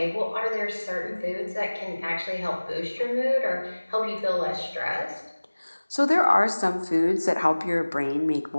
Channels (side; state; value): both; inverted; correlation -1.00